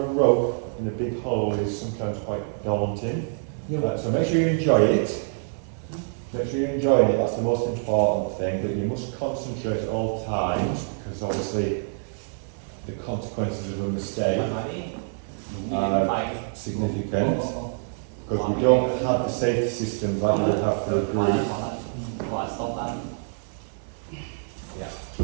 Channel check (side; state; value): left; silent; 61 dB below the other